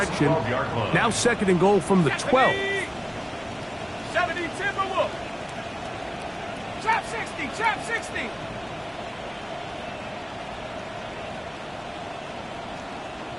Now second and goal from the 12. 70 Timberwolf. Trap 60, trap 60.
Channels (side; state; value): both; identical; correlation 1.00